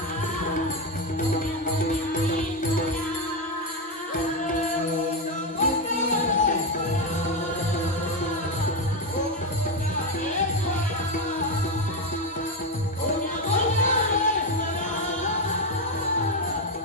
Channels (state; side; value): normal; both; correlation 0.10